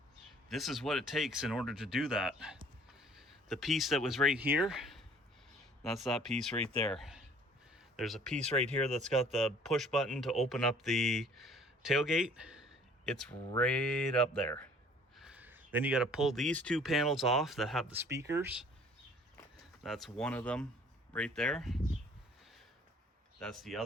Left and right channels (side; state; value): both; normal; correlation 0.54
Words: this is what it takes in order to do that. The piece that was right here, that's that piece right there. There's a piece right here that's got the push button to open up the tailgate. It's right up there. Then you got to pull these two panels off that have the speakers. That's one of them right there. That's the